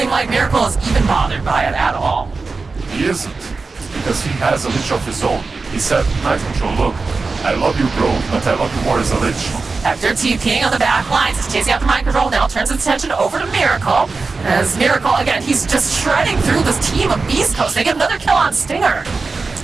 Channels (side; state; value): left; quieter; 4.1 dB